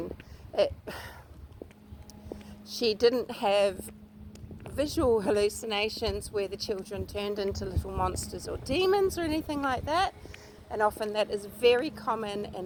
She didn't have visual hallucinations where the children turned into little monsters or demons or anything like that. And often that is very common in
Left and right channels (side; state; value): both; identical; correlation 1.00